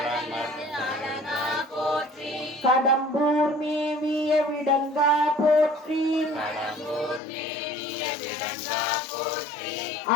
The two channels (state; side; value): drops out; right; at 7.2 s